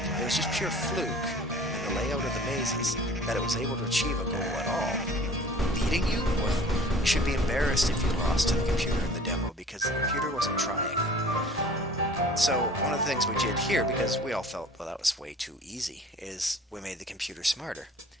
It was just pure fluke in the layout of the mazes that it was able to achieve a goal at all. Beating you? Well, you should be embarrassed if you lost to the computer in the demo because the computer wasn't trying. So one of the things we did here, because we all felt, well, that was way too easy, is we made the computer smarter.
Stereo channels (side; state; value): both; normal; correlation 0.47